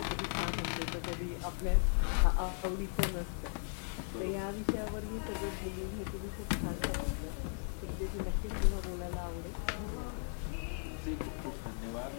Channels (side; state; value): right; silent; 53 dB below the other